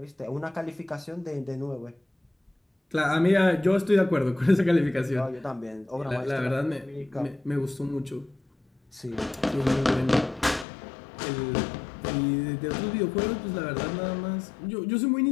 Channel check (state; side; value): drops out; right; at 10.7 s